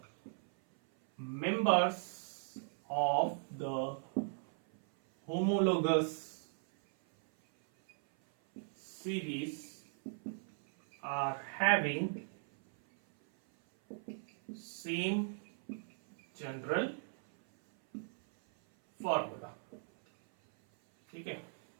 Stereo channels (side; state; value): left; silent; 53 dB below the other